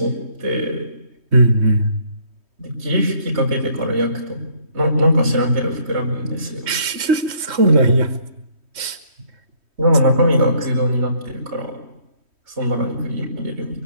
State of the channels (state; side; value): late; left; 3.1 ms